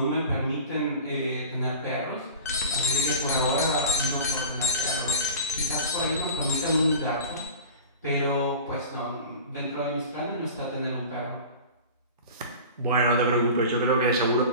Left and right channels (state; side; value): inverted; both; correlation -0.36